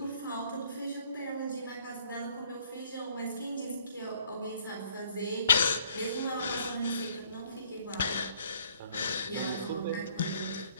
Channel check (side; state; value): both; inverted; correlation -0.60